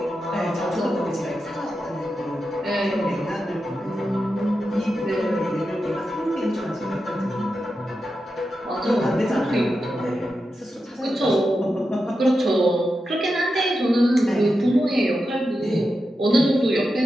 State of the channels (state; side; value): normal; both; correlation 0.89